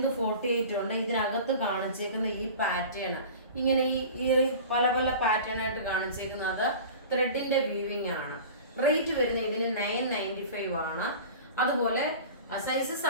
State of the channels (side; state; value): both; inverted; correlation -0.38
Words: 48 ഉണ്ട്. ഇതിനകത്ത് കാണിച്ചേക്കുന്ന ഈ പാറ്റേൺ ഇങ്ങനെ ഈ പല പല പാറ്റേൺ ആയിട്ട് കാണിച്ചേക്കുന്നത് ത്രെഡിന്റെ വീവിങ് ആണ്. റേറ്റ് വരുന്നത് ഇതിന് 995 ആണ്. അതുപോലെ സൈസസ്